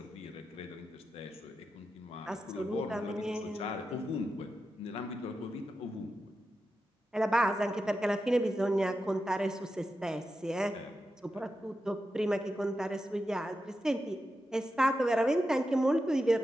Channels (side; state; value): both; normal; correlation 0.89